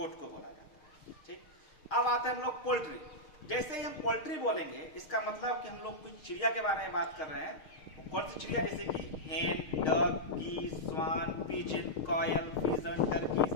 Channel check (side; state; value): right; late; 6.5 ms